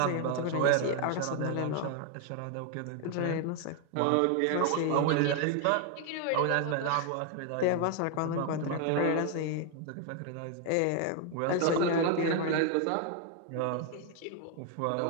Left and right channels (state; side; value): different; both; correlation 0.01